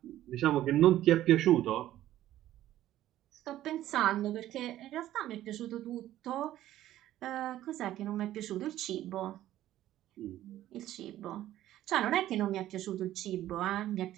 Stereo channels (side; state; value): left; quieter; 13.5 dB